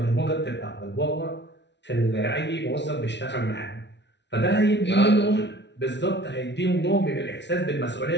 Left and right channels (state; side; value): late; right; 0.51 ms